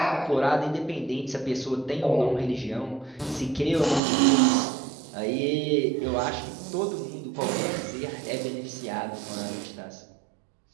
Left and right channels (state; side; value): drops out; left; at 4.0 s